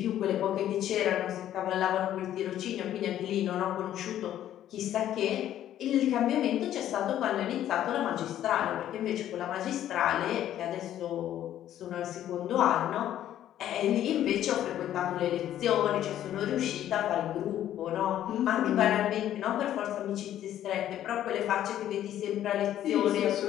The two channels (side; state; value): right; quieter; 11.7 dB